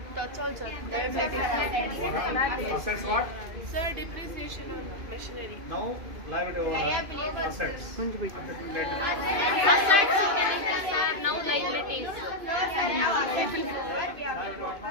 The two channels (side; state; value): left; late; 2.5 ms